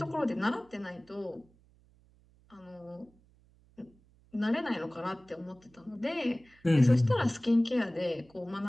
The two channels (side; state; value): right; noise; hum, 30 dB below the sound